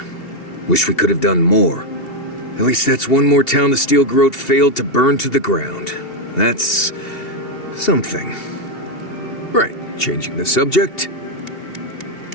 Wish we could have done more. At least that's one more town the Steel Garrote failed to burn to the ground. That's something. Right. Changing the subject.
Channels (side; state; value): right; late; 2.7 ms